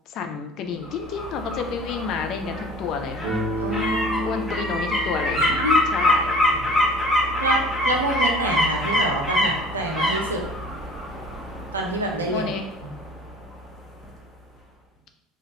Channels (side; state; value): both; normal; correlation 0.46